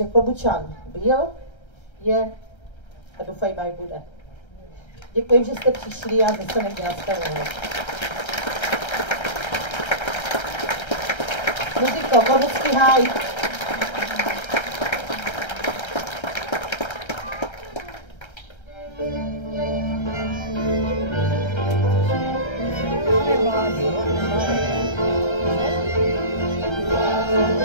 Klobučan byl, je a doufejme, aj bude. Děkuji, že jste přišli a zase někde nastavenou. Muziko, Korucký háj.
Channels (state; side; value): late; right; 1.3 ms